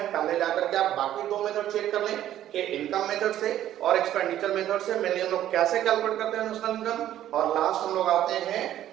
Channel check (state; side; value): quieter; left; 12.1 dB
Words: पहले जाकर के आप बाकी दो मेथड चेक कर लें कि इनकम मेथड से और एक्सपेंडिचर मेथड से मेनली हम लोग कैसे कैलकुलेट करते हैं नेशनल इनकम। और लास्ट हम लोग आते हैं